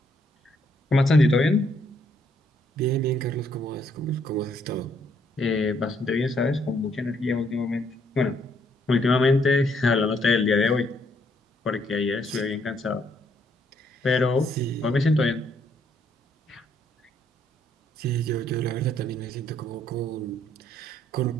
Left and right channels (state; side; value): normal; both; correlation 0.70